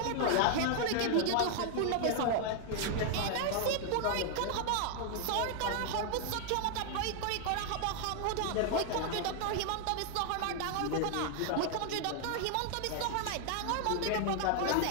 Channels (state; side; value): different; both; correlation 0.00